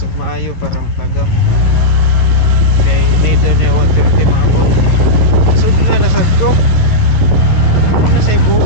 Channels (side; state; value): right; late; 11 ms